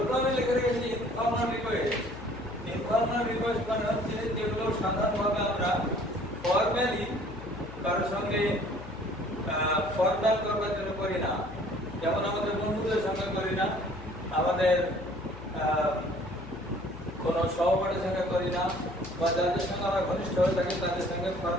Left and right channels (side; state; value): left; noise; hum, 14 dB below the sound